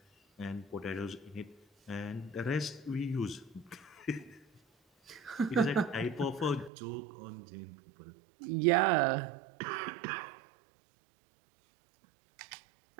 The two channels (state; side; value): drops out; left; at 6.7 s